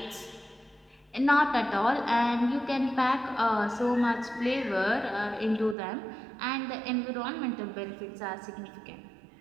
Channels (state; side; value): drops out; left; at 5.8 s